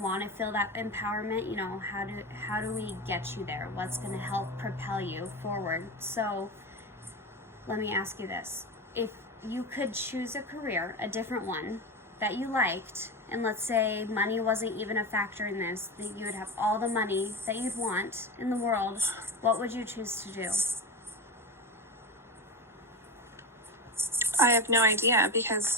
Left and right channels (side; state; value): both; normal; correlation 0.20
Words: to feel that empowerment, you know, how do we get you there? What's going to help propel you forward? So let me ask you this. If you could choose a career, a different one that you liked, and let's say money wasn't even a factor in this, that you would have all the money that you'd want in the world, what would you choose to do? I have no idea,